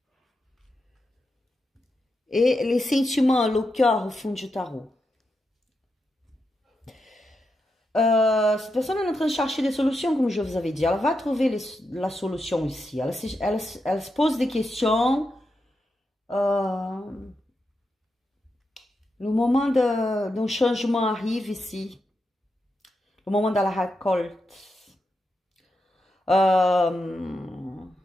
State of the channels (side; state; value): both; normal; correlation 0.86